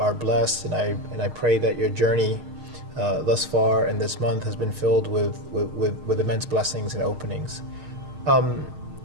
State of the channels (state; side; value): late; left; 6.5 ms